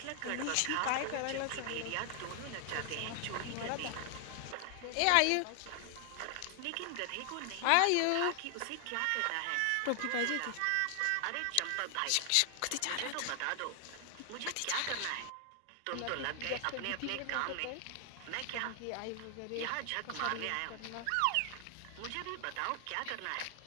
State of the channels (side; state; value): both; different; correlation 0.00